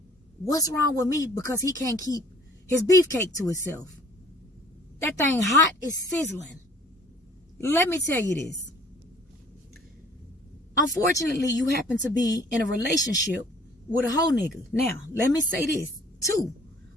what's wrong with me because he can't keep his beefcake to himself. That thing hot is sizzling. Let me tell you this. Unfortunately, you happen to be in a relationship with a hoe nigga. Now, let me say this too.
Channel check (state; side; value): normal; both; correlation 0.54